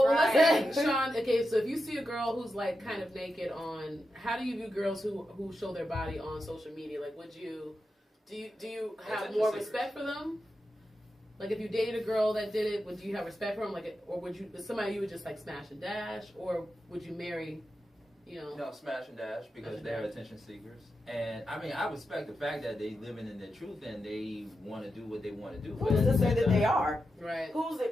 Right. let's say, Sean. Okay, so if you see a girl who's like kind of naked on, how do you view girls who show their body on social media? Like, would you do you have Attention more seekers. respect for them? Like, if you dated a girl that did it, would you have respect for them? Like, or would you somebody you would just like smash and dash, or would you marry? You know. No, smash and dash because Smash and they're dash. attention seekers. And I mean, I respect the fact that they living in their truth and they want to do what they want to do. But Who's at to the say same that time- they are? Right. Who's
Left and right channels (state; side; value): normal; both; correlation 0.89